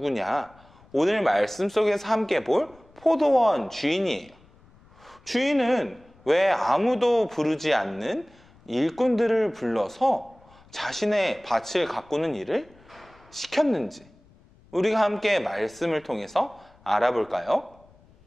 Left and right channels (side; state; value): left; noise; rumble, 28 dB below the sound